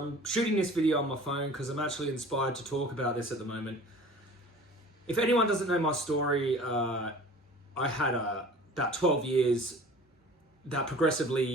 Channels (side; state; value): both; normal; correlation 0.44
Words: shooting this video on my phone because I'm actually inspired to talk about this at the moment. If anyone doesn't know my story, I had about 12 years that